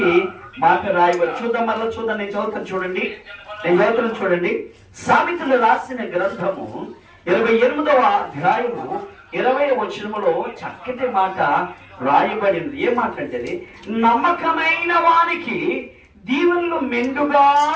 మాట రాయబడి. చూద్దాం, మరలా చూద్దాం. నేను చదువుతాను చూడండి. సామెతలు రాసిన గ్రంథము 28వ అధ్యాయము 20వ వచనములో చక్కటి మాట రాయబడింది. ఏ మాట అంటే, నమ్మకమైన వానికి దీవెనలు మెండుగా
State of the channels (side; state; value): both; identical; correlation 1.00